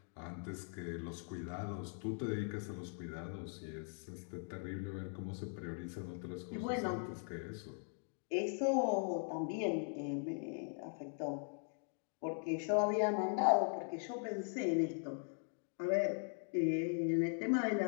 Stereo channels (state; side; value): silent; right; 51 dB below the other